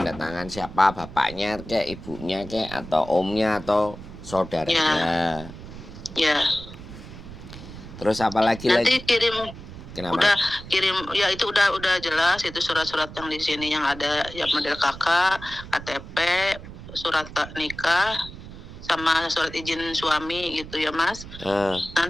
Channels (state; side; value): noise; right; rumble, 14 dB below the sound